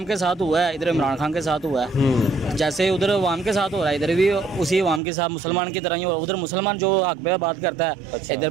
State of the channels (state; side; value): drops out; left; at 5.0 s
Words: के साथ हुआ है, इधर इमरान खान के साथ हुआ है, जैसे उधर अवाम के साथ हो रहा है, इधर भी उसी अवाम के साथ मुसलमान की तरह ही हो। उधर मुसलमान जो हक पे बात करता है, अच्छा, इधर